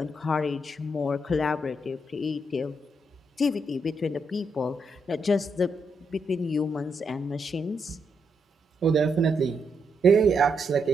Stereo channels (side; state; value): both; normal; correlation 0.80